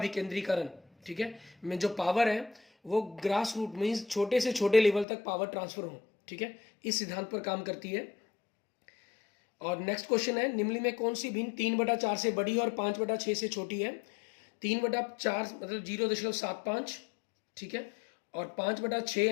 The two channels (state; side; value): drops out; right; at 5.1 s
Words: ठीक है, में जो पावर है वो ग्रास रूट मीन्स छोटे से छोटे लेवल तक पावर ट्रांसफर हो, ठीक है, इस सिद्धांत पर काम करती है। और नेक्स्ट क्वेश्चन है, निम्न में कौन सी भिन्न 3/4 से बड़ी और 5/6 से छोटी है। 3/4 मतलब 0.75, ठीक है, और 5/6